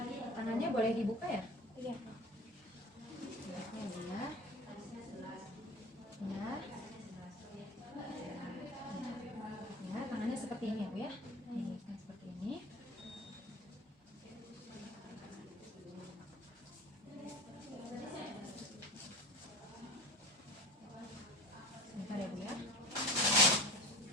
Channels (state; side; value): normal; both; correlation 0.35